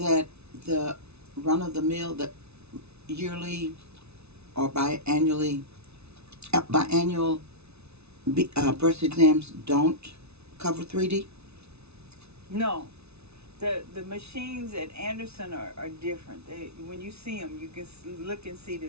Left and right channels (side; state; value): left; late; 0.80 ms